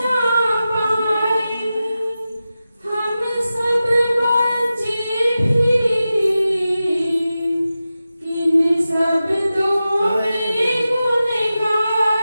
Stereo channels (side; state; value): both; inverted; correlation -0.93